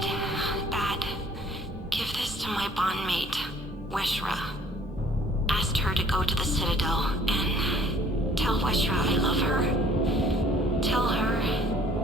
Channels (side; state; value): both; normal; correlation 0.57